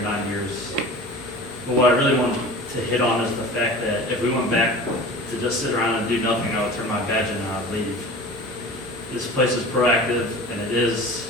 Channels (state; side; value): noise; right; rumble, 28 dB below the sound